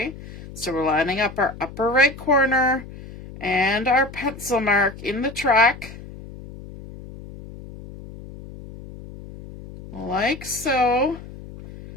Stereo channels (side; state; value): left; noise; hum, 15 dB below the sound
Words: So we're lining up our upper right corner and our pencil mark in the track, like so,